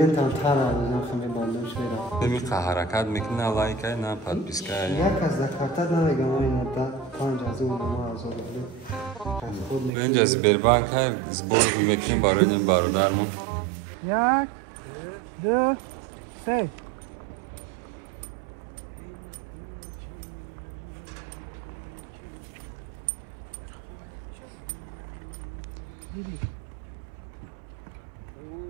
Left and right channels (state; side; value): drops out; left; at 9.9 s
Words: میخواه حرکت میکنه لایک های نه پادپیسک های یک از دکارتا نمیگم این مدت 5 از اون ما از اون اینجا از بربانک های زبور میکنیم برای این برادرمون 1 2 3